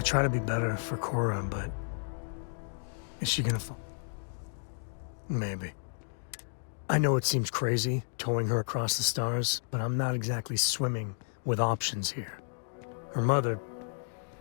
try to be better for Cora, but is she gonna fall? Maybe. I know it seems crazy, towing her across the stars, but I'm not exactly swimming with options here. Her mother...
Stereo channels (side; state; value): right; silent; digital silence